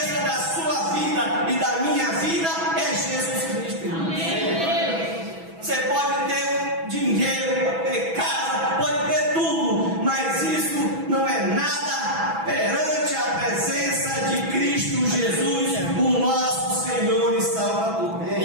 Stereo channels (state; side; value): late; left; 6.1 ms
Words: da sua vida e da minha vida é Jesus Cristo. Você pode ter dinheiro, pode ter casa, pode ter tudo, mas isso não é nada perante a presença de Cristo Jesus, o nosso Senhor e Salvador.